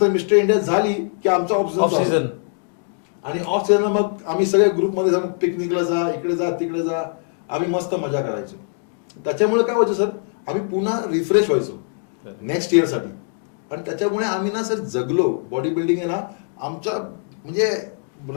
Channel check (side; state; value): right; silent; 64 dB below the other